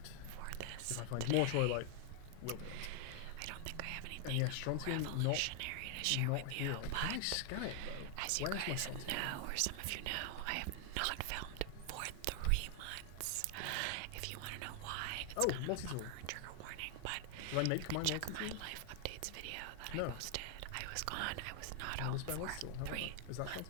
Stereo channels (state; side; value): different; both; correlation 0.00